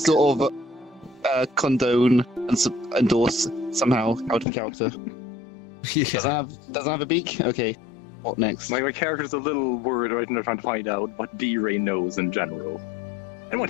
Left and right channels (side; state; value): right; drops out; at 4.5 s